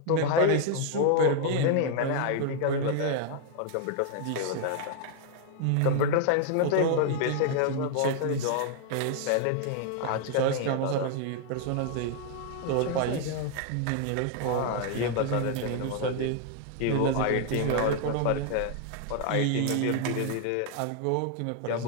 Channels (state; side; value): different; both; correlation 0.00